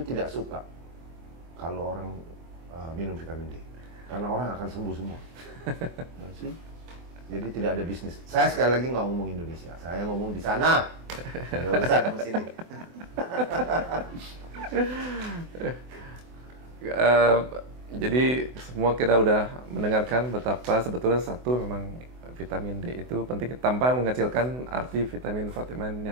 tidak suka kalau orang minum vitamin D, karena orang akan sembuh semua. Jadi tidak ada bisnis. Saya sekali lagi nggak ngomong Indonesia, saya ngomong di sana. Ada urusan sama sini. Jadi semua kita udah mendengarkan betapa sebetulnya memang vitamin D itu penting tanpa mengecilkan arti vitamin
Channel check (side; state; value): left; late; 24 ms